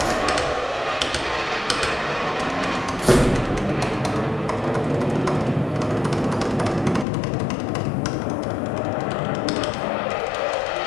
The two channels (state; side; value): drops out; right; at 7.1 s